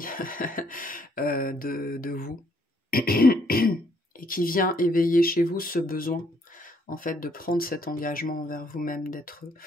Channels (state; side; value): normal; both; correlation 0.68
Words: de vous, et qui vient éveiller chez vous ce besoin, en fait, de prendre cet engagement envers vous-même, d'être